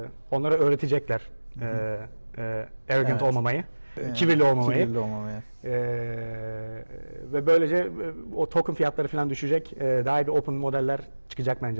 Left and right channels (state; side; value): inverted; both; correlation -1.00